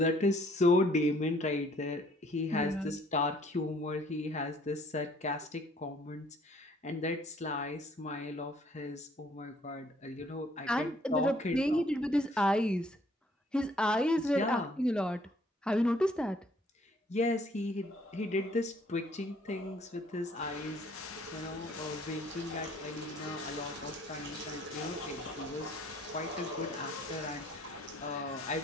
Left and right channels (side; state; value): both; normal; correlation 0.61